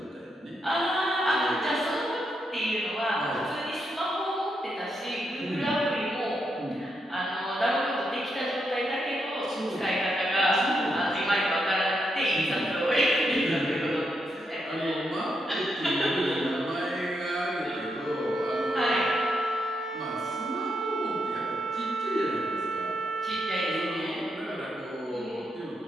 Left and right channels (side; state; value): both; normal; correlation 0.81